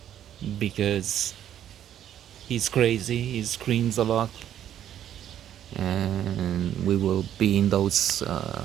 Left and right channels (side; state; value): left; quieter; 10.7 dB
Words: because he's crazy, he screams a lot, and we will be in those